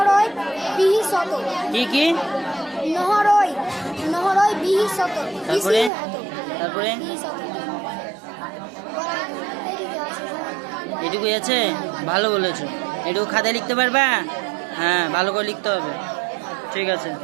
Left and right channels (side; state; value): left; drops out; at 5.9 s